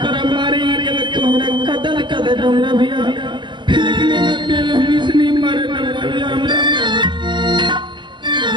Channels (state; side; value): late; left; 0.22 ms